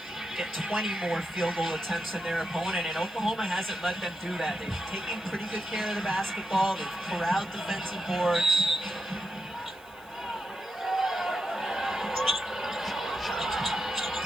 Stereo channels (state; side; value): noise; right; hiss, 26 dB below the sound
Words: get 20 more field goal attempts than their opponent, and Oklahoma hasn't let them do that. They've taken pretty good care of the basketball. They've corralled defensive boards.